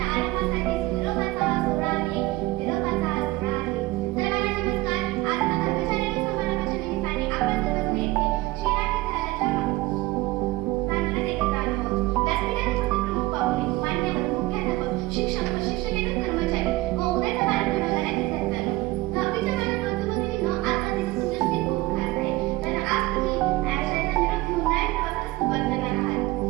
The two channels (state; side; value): quieter; left; 19.2 dB